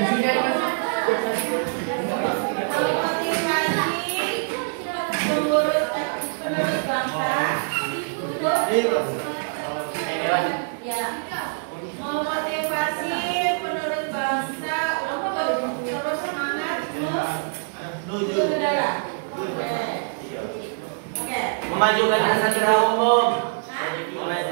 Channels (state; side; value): silent; left; 56 dB below the other